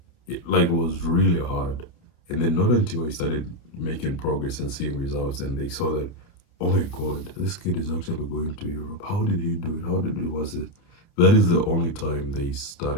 it like was really hard. And then not until I started making progress and seeing results, and they saw that, oh my God, this kid is actually going to Europe. How did he do it? How did it was it? That is the only time they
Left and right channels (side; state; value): right; late; 29 ms